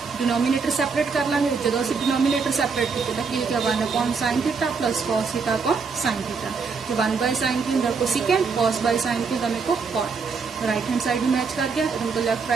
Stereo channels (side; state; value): left; quieter; 5.1 dB